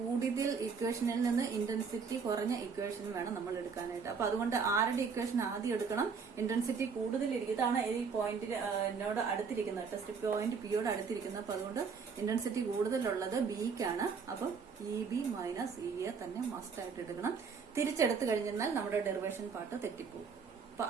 ഇക്വേഷനിൽ നിന്ന് ഇന്റൻസിറ്റി കുറഞ്ഞ ഇക്വേഷൻ വേണം നമ്മൾ എടുക്കാനായിട്ട്. അപ്പൊ അതുകൊണ്ട് ആരുടെ ഇക്വേഷൻ ആദ്യം എടുക്കണം? ഇന്റൻസിറ്റി കൂടുതലിരിക്കും. ഇതാണ് ഈ പോയിന്റിനോട് അടുത്തിരിക്കുന്നത്, ടെസ്റ്റ് പോയിന്റ് പിയോട് അടുത്തിരിക്കുന്നത്. അപ്പൊ അതുകൊണ്ട് ഇന്റൻസിറ്റി കൂടുതലുള്ളത് ബിക്കാണ്. അപ്പൊ E B minus E A തന്നെ മസ്റ്റ് ആയിട്ട് എടുക്കണം. തിരിച്ചെടുത്തു കഴിഞ്ഞാൽ നമ്മുടെ ഡെറിവേഷൻ പാർട്ട് തെറ്റിപ്പോകും. അപ്പൊ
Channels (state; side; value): quieter; left; 5.7 dB